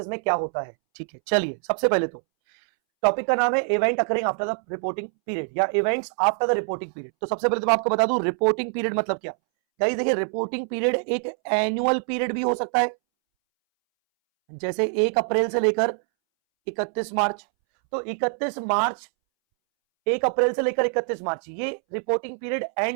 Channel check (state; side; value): silent; left; 62 dB below the other